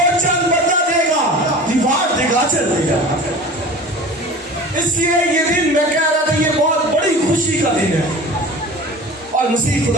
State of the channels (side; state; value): both; normal; correlation 0.37